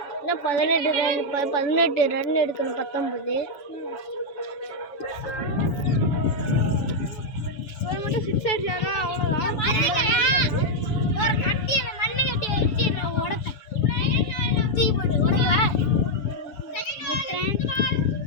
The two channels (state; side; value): late; right; 7.0 ms